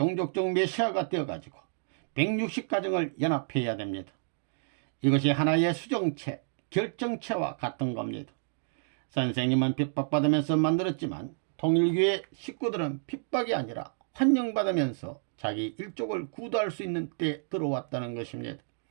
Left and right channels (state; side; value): silent; left; digital silence